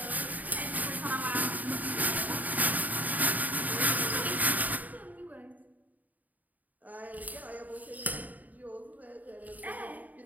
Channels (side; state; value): left; late; 0.078 ms